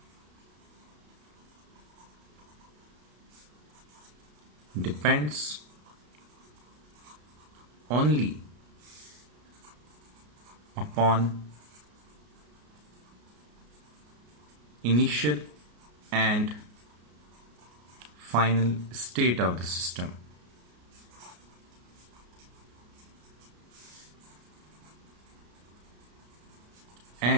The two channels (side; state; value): left; late; 33 ms